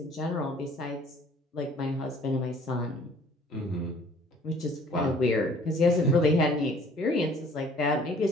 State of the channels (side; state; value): both; normal; correlation 0.55